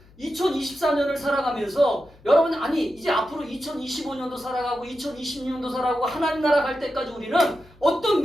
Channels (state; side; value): noise; left; hum, 26 dB below the sound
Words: 2024년을 살아가면서 여러분 아니 이제 앞으로 2025년도 살아가고 2026년도 살아가고 하나님 나라 갈 때까지 우리는 어떤